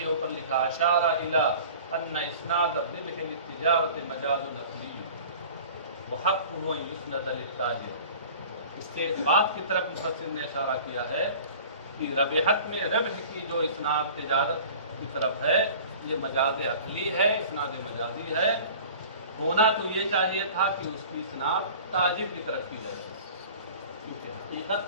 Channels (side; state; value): both; inverted; correlation -0.43